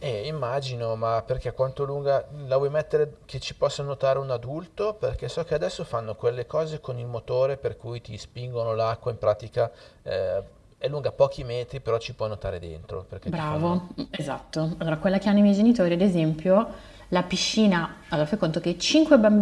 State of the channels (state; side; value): identical; both; correlation 1.00